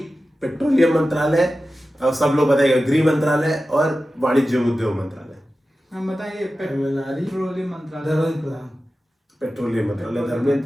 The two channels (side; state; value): both; normal; correlation 0.94